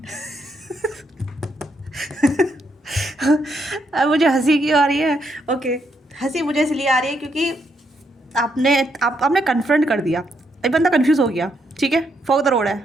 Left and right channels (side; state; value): both; normal; correlation 0.77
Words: अब मुझे हंसी क्यों आ रही है। ओके, हंसी मुझे इसलिए आ रही है क्योंकि आपने कन्फ्रंट कर दिया, एक बंदा कंफ्यूज हो गया। ठीक है, फॉर द रोड है,